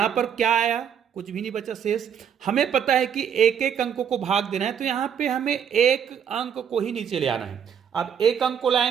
पर क्या आया, कुछ भी नहीं बचा शेष। हमें पता है कि एक एक अंकों को भाग देना है, तो यहां पे हमें एक अंक को ही नीचे ले आना है। अब एक अंक को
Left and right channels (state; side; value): quieter; left; 8.1 dB